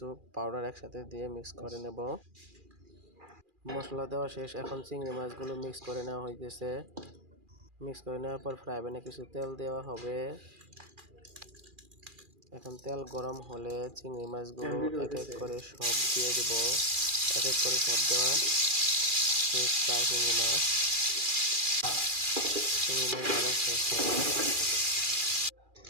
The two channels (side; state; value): left; late; 2.4 ms